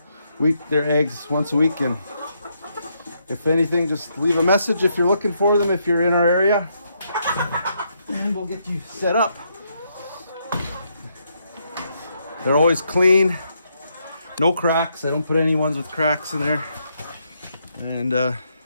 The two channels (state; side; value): inverted; both; correlation -0.77